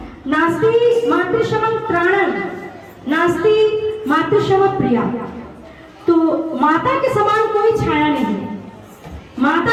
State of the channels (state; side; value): identical; both; correlation 1.00